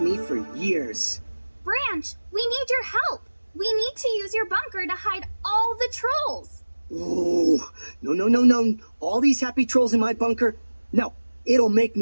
me for years. Branch, we need your help! We need to use your bunker to hide all the trolls! Ooh, no. All these happy trolls in my bunker? No, it'll make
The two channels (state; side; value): inverted; both; correlation -1.00